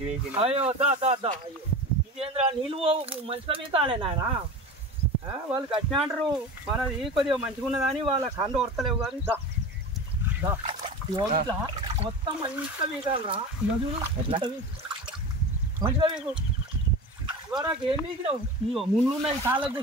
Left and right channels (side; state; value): both; normal; correlation 0.31